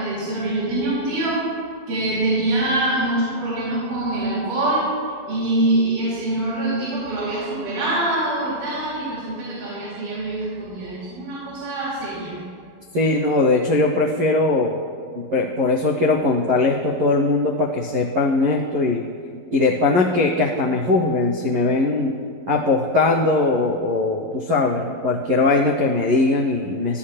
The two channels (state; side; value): late; left; 12 ms